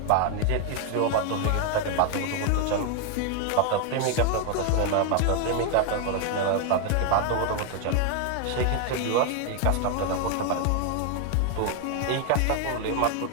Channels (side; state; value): both; different; correlation 0.00